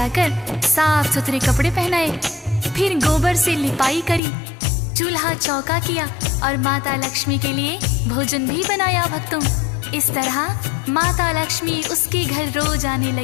साफ सुथरे कपड़े पहनाए। फिर गोबर से लिपाई करी, चूल्हा चौका किया और माता लक्ष्मी के लिए भोजन भी बनाया। भक्तों इस तरह माता लक्ष्मी उसके घर रोज आने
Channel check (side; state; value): right; drops out; at 4.2 s